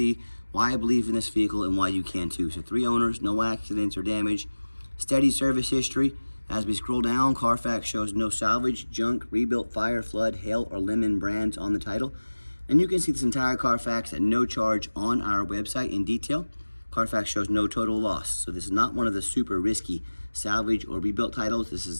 why I believe in this vehicle, and why you can too. So 3 owners, no accidents or damage, steady service history. As we scroll down, Carfax shows no salvage, junk, rebuilt, fire, flood, hail, or lemon brands on the title. And you can see this entire Carfax at no charge on our website in detail. Carfax shows no total loss. So this is not one of the super risky salvage or rebuilt titles. This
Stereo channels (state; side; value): inverted; both; correlation -1.00